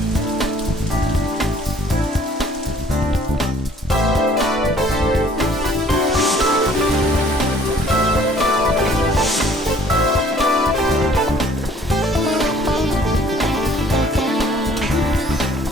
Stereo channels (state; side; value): normal; both; correlation 0.57